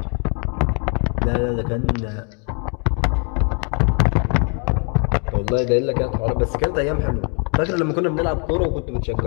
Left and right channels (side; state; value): right; quieter; 38.7 dB